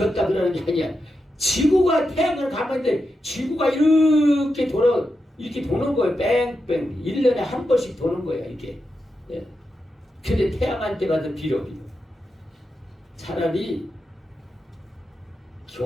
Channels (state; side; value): normal; both; correlation 0.88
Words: 그러는 게 아니야. 지구가 태양을 가만히 있는데 지구가 이렇게 도는 거예요. 뺑뺑. 1년에 한 번씩 도는 거예요. 이렇게. 예. 근데 태양한테 가서 빌어. 차라리